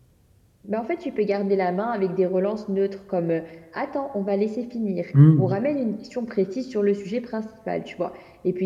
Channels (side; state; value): both; identical; correlation 1.00